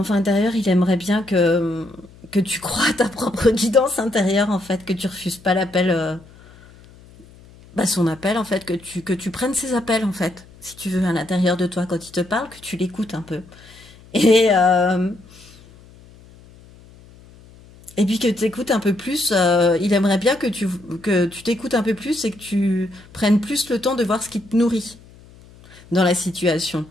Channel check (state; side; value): noise; left; hum, 23 dB below the sound